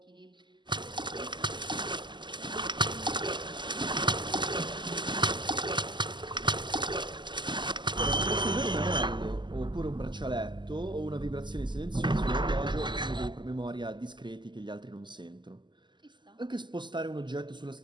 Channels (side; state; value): left; late; 0.22 ms